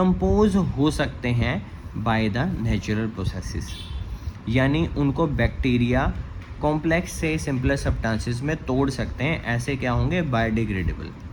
हो सकते हैं बाय द नेचुरल प्रोसेसेस, यानी उनको बैक्टीरिया कॉम्प्लेक्स से सिंपलर सब्सटेंसेस में तोड़ सकते हैं, ऐसे क्या होंगे, बायोडिग्रेडेबल।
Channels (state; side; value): identical; both; correlation 1.00